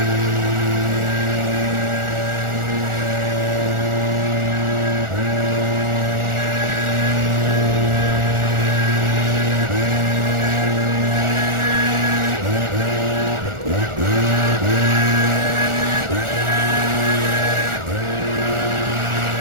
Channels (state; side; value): late; left; 1.4 ms